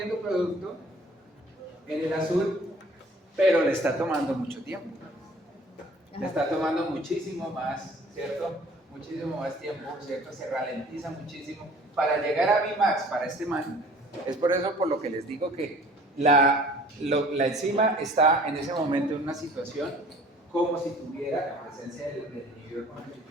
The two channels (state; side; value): normal; both; correlation 0.51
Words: producto en el azul, pero le está tomando mucho tiempo. Le está tomando muchísimo más, ¿cierto? Muchísimo más tiempo, ¿cierto? Se ralentiza muchísimo para llegar a Vmax para este man. Es por eso por lo que les digo que la enzima está en ese momento en una situación como si tuviera la presencia del inhibidor